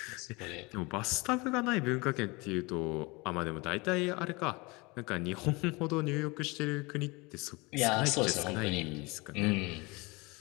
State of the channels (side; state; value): right; quieter; 25.4 dB